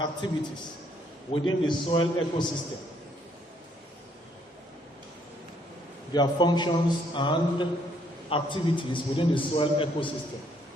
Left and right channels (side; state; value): both; normal; correlation 0.68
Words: within the soil ecosystem. Their functions and activities within the soil ecosystem.